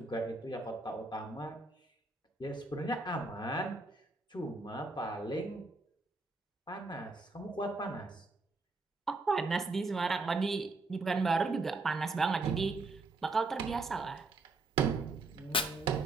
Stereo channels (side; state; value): left; quieter; 3.3 dB